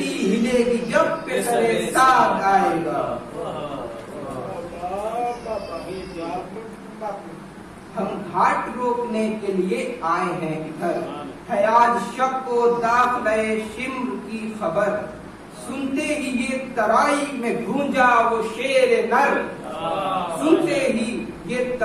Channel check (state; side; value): identical; both; correlation 1.00